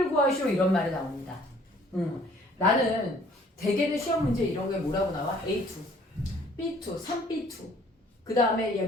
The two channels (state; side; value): normal; both; correlation 0.58